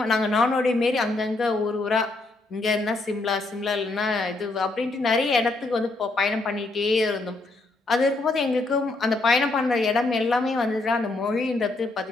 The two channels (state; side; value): quieter; right; 3.2 dB